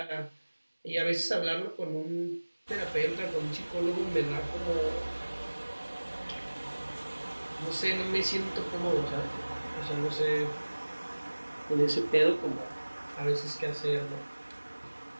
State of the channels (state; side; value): inverted; both; correlation -1.00